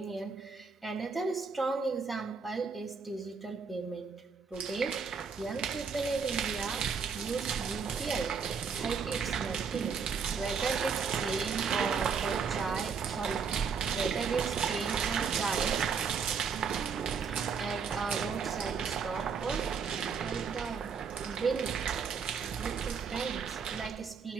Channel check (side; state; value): left; quieter; 5.8 dB